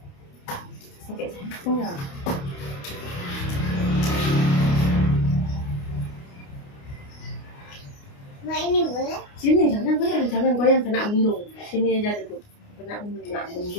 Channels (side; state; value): right; late; 29 ms